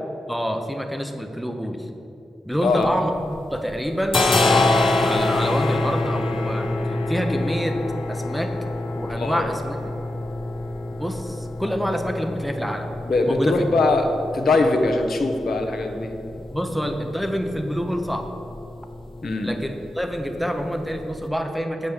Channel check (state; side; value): normal; both; correlation 0.88